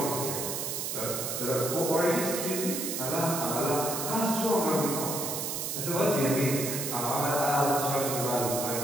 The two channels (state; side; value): noise; right; hiss, 3 dB below the sound